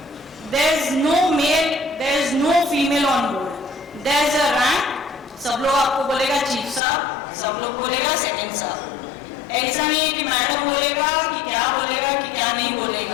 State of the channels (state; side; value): drops out; right; at 6.8 s